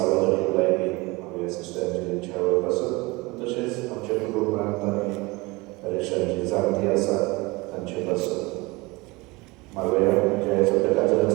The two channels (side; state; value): left; quieter; 23.8 dB